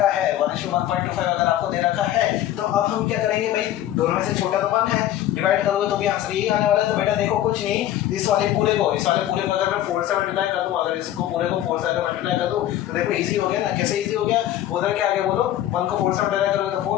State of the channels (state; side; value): quieter; right; 12.7 dB